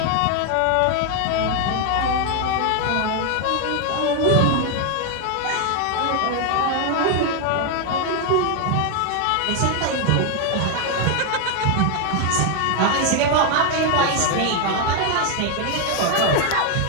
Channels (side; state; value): both; different; correlation 0.01